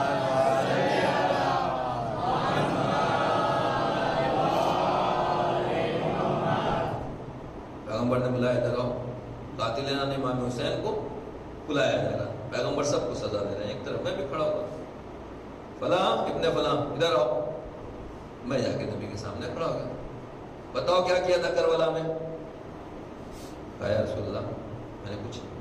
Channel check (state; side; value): identical; both; correlation 1.00